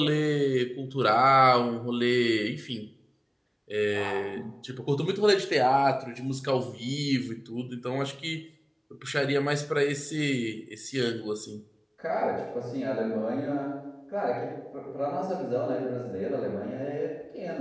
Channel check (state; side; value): identical; both; correlation 1.00